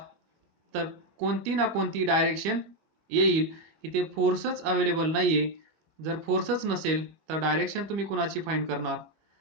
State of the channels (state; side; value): late; left; 25 ms